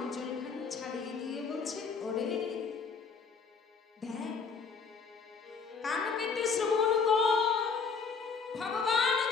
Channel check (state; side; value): quieter; right; 5.3 dB